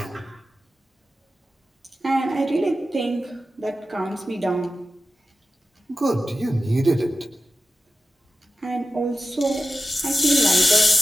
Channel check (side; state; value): both; normal; correlation 0.93